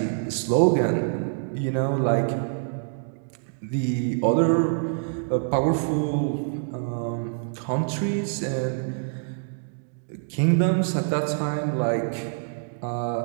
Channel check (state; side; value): silent; left; digital silence